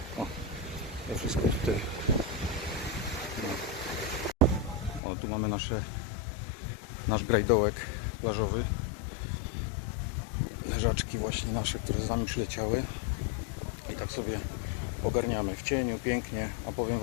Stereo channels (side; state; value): right; drops out; at 5.0 s